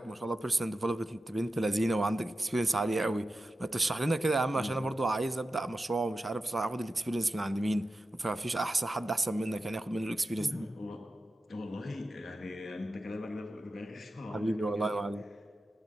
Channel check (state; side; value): normal; both; correlation 0.92